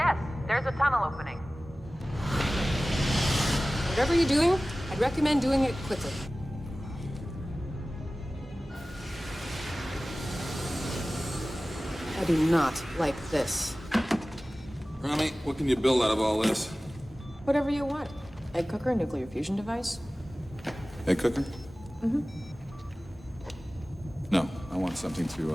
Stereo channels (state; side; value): normal; both; correlation 0.97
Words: There's a tunnel opening. Whatever you're doing, I'd recommend doing it quickly. I do not like this. Rami, what can you build out of all this? Whatever you want. Egg cooker, nuclear fusion device. Egg cooker? Mm-hmm. No, I want something